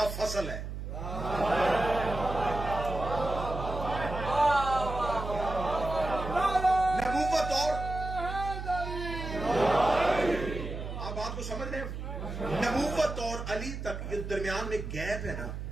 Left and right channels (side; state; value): right; noise; hum, 7 dB below the sound